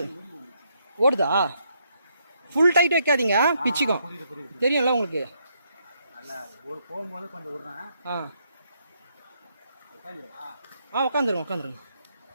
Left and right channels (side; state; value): both; inverted; correlation -0.75